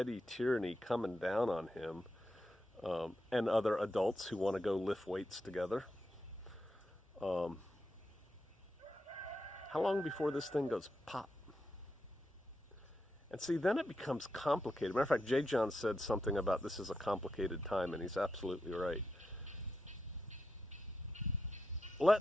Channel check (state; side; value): normal; both; correlation 0.85